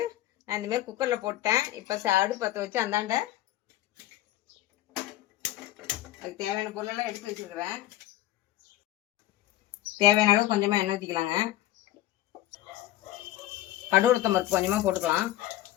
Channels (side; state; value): right; quieter; 14.7 dB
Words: நான் இந்த மாதிரி குக்கர்ல போட்டேன். இப்போ அடுப்பு பற்ற வச்சு அந்தாண்ட அதுக்கு தேவையான பொருளெல்லாம் எடுத்து வச்சிருக்கிறேன். தேவையான அளவு கொஞ்சமா எண்ணெய் ஊற்றிக்கலாங்க. கடுகு உளுத்தம் பருப்பு கொஞ்சமா போட்டுக்கலாம்.